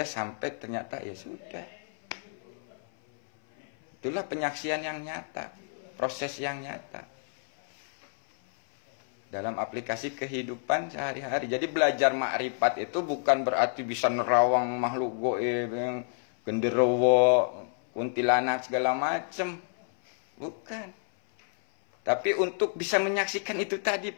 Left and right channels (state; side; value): silent; right; 58 dB below the other